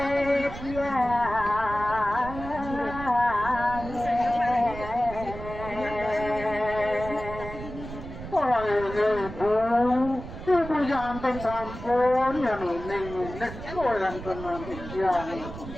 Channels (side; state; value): right; noise; rumble, 11 dB below the sound